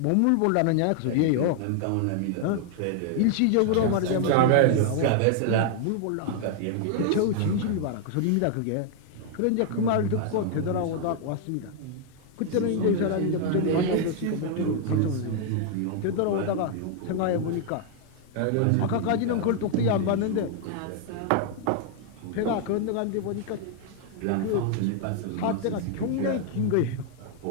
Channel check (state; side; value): different; both; correlation 0.00